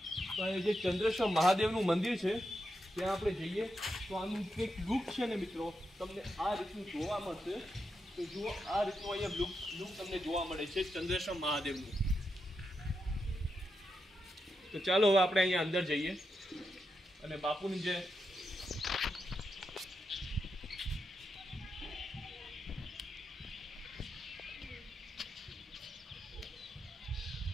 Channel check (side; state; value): both; normal; correlation 0.85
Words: તો અહીંયા જે ચંદ્રેશ્વર મહાદેવનું મંદિર છે ત્યાં આપણે જઈએ તો આનું કંઈક લુક છે ને મિત્રો, તમને આ રીતનું જોવા મળશે. તો જુઓ, આ રીતનું અહીંયા લુક તમને જોવા મળે છે ચંદ્રેશ્વર મહાદેવનું. તો ચાલો હવે આપણે અહીંયા અંદર જઈએ અને બાપુની જે